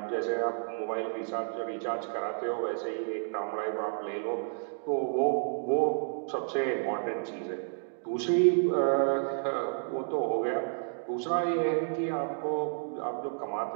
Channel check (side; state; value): left; silent; digital silence